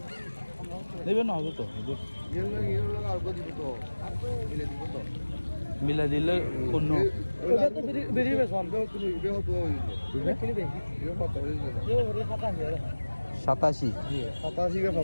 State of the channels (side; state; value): both; inverted; correlation -1.00